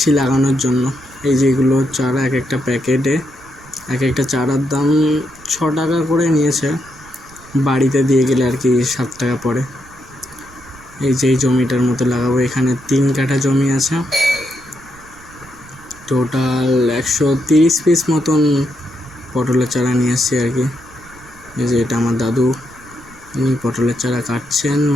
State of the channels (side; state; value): right; noise; rumble, 23 dB below the sound